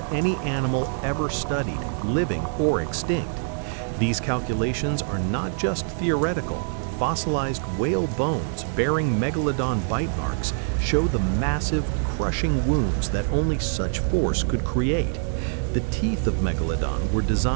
any animal ever studied, living or extinct. These calculations are not just theoretical. Fossilized whale bones bearing Megalodon bite marks show the massive, crushing wounds that only such force could create. The teeth of Megalodon were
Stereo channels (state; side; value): silent; left; digital silence